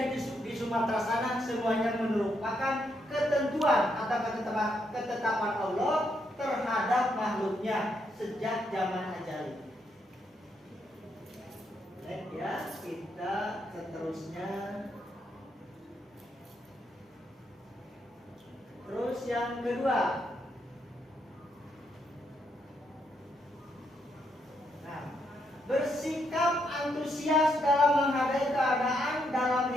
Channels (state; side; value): normal; both; correlation 0.78